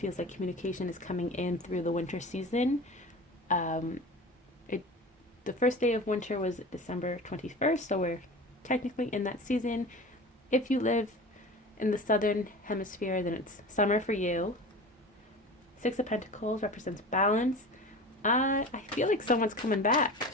like communication is coming in through the winter season. The first day of winter was December 21st, so we're technically in that season. If you live in the southern hemisphere, then it's summer for you. Six of Pentacles represents balance. I feel like someone's coming back.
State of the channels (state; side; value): normal; both; correlation 0.34